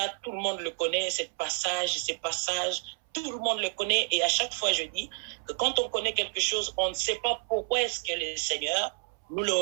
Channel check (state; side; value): silent; left; 58 dB below the other